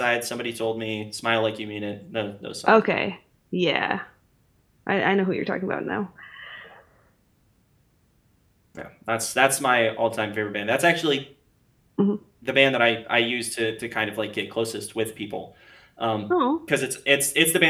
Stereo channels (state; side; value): identical; both; correlation 1.00